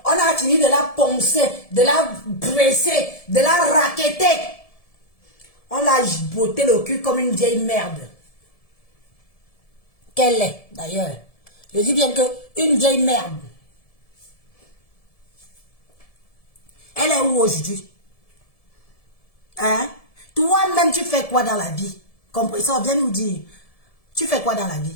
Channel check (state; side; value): late; right; 1.7 ms